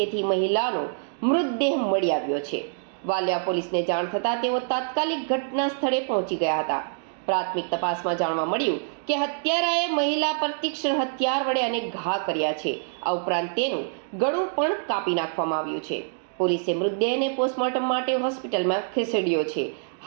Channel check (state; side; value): silent; left; digital silence